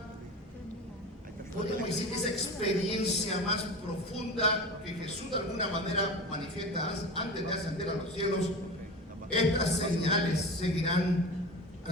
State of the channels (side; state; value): both; normal; correlation 0.31